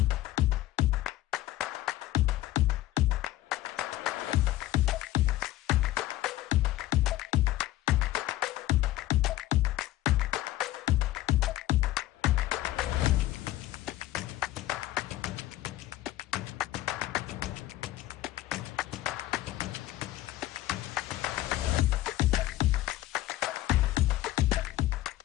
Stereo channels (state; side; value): quieter; right; 15.4 dB